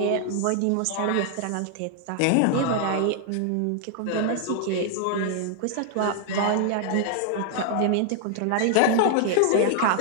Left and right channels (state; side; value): different; both; correlation 0.00